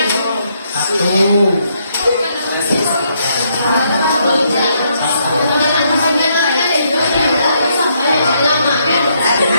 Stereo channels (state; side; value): inverted; both; correlation -0.74